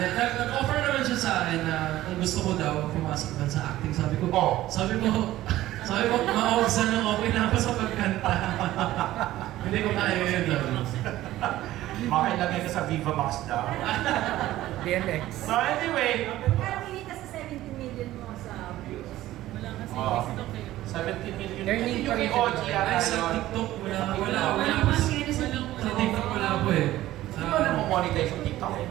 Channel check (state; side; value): quieter; left; 15.1 dB